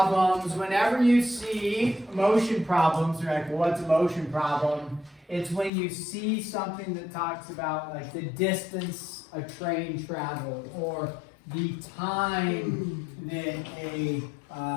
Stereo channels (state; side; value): drops out; right; at 5.7 s